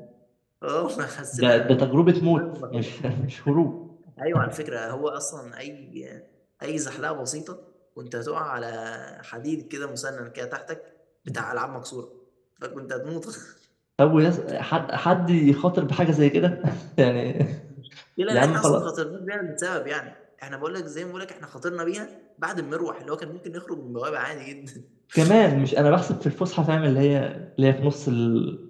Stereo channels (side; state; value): both; identical; correlation 1.00